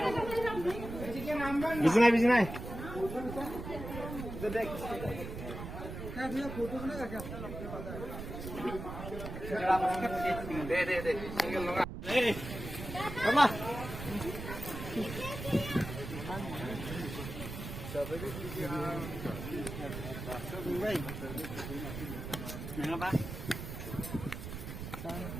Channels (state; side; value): noise; right; rumble, 8 dB below the sound